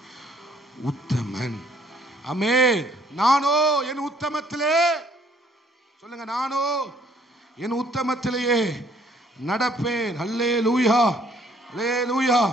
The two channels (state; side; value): normal; both; correlation 0.62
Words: உத்தமன். ஆமென். நானோ என் உத்தமத்திலே, சொல்லுங்க, நானோ என் உத்தமத்திலேயே நடப்பேன். அல்லேலூயா, அல்லேலூயா.